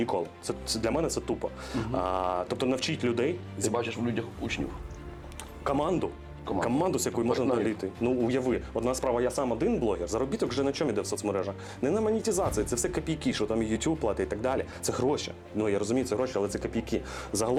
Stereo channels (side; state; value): both; identical; correlation 1.00